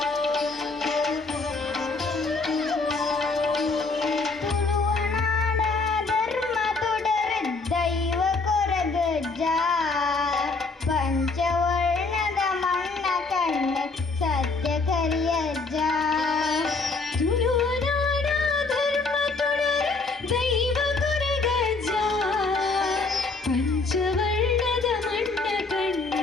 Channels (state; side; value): quieter; right; 3.9 dB